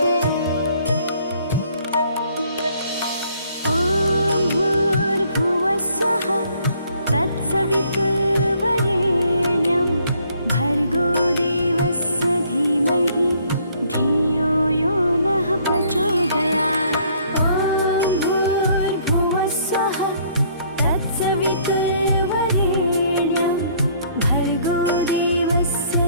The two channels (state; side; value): inverted; both; correlation -0.63